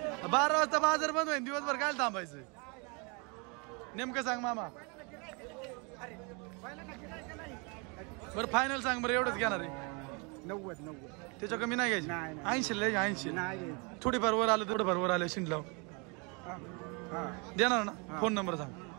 12 वाजता बाजार बंद होईल. दिवसभर काय थांबायचं? नेमकं सांग मामा. बरं फायनल सांग बरं. एवढंच घेणार आहे. 90. त्याच्या कमी नाही घ्यायची. 80 ला 80. नाही थोडीफार वर आलं थोडंफार वर आलं शिंडलाव देणार ना. फोन नंबर सांग.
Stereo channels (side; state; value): left; quieter; 31.8 dB